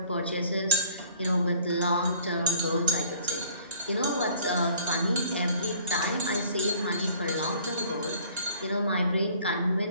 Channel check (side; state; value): both; inverted; correlation -0.53